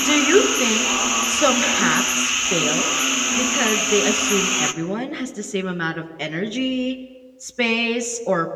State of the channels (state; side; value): identical; both; correlation 1.00